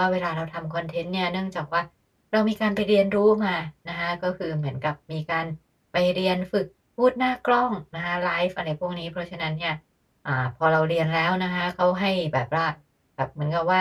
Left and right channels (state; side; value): identical; both; correlation 1.00